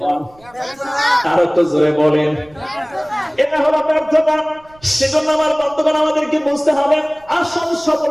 বলেন, আরো তো জোরে বলেন। এটা হলো ব্যর্থতা। সেজন্য আমার বন্ধুগণ আমাদেরকে বুঝতে হবে আসল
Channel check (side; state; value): right; noise; rumble, 29 dB below the sound